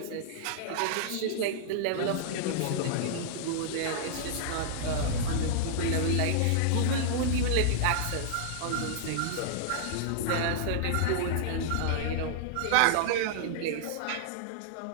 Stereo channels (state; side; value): different; both; correlation -0.01